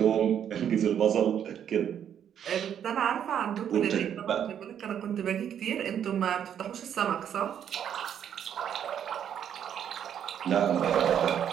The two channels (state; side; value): quieter; left; 9.1 dB